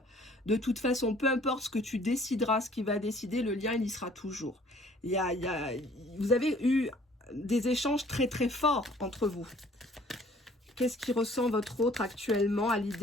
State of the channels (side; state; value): both; normal; correlation 0.56